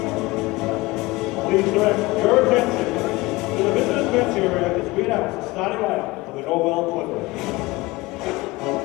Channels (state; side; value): quieter; right; 21.5 dB